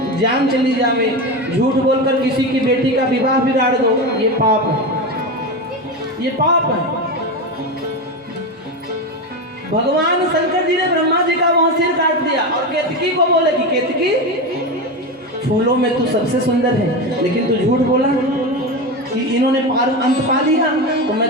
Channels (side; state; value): both; normal; correlation 0.19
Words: जान चली जावे, झूठ बोलकर किसी की बेटी का विवाह बिगाड़ दो, ये पाप है, ये पाप है। भगवान शंकर जी ने ब्रह्मा जी का वहां सिर काट दिया और केतकी को बोले कि केतकी फूलों में तू सबसे सुंदर है, लेकिन तू झूठ बोला कि इन्होंने अंत पा लिया, तो